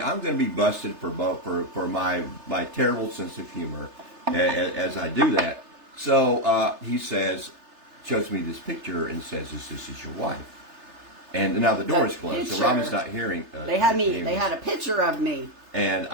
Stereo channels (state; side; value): late; left; 3.3 ms